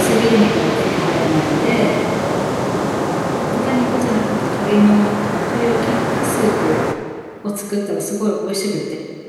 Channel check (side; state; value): both; identical; correlation 1.00